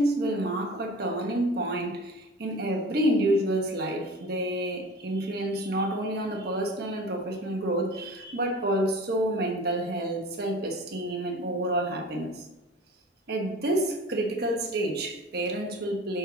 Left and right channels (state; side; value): normal; both; correlation 0.39